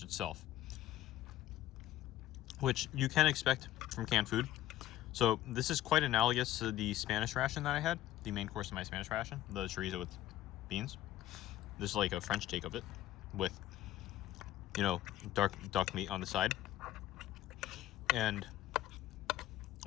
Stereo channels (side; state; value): right; quieter; 13.6 dB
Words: itself, which you can expect from canned food. So this is quite analogous to the Spanish ration that I had, the main course of my Spanish ration, the chorizo with beans. This is like a French take of it with, you know, dark duck meat on the side and